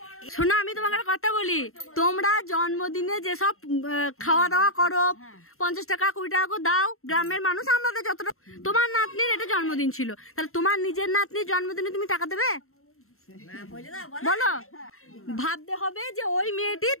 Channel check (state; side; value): late; right; 0.62 ms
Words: শোনো, আমি তোমাকে কথা বলি, তোমরা জন্মদিনে যেসব খাওয়া দাওয়া করো, 50 টাকা 20 টাকা করে দাও, গ্রামের মানুষ আমাদের যতটা। তোমার নাতনির এটা জন্মদিন ছিল, তাহলে তোমার নিজের নাতনির জন্মদিনে তুমি টাকা দেবে? বলো, ভাবতে হবে যে ওই মেয়েটি